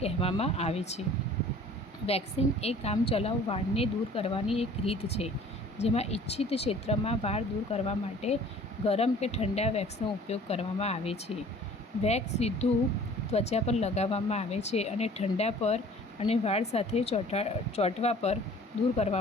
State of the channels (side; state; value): both; normal; correlation 0.50